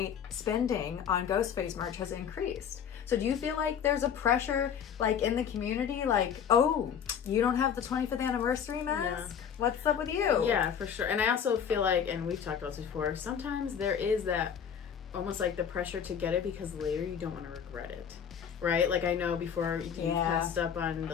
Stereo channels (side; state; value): right; quieter; 7.9 dB